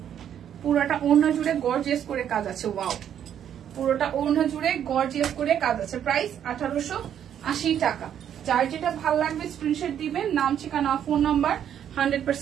পুরোটা ওড়না জুড়ে গর্জিয়াস করে কাজ আছে। ওয়াও, পুরোটা ওড়না জুড়ে গর্জিয়াস করে কাজ আছে। প্রাইস 1880 টাকা। যার যেটা ভালো লাগবে স্ক্রিনশট দিবেন, নাম ঠিকানা ফোন নাম্বার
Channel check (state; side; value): quieter; left; 9.6 dB